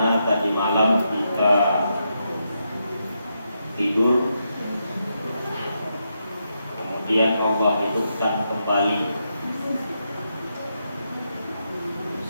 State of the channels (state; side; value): inverted; both; correlation -0.83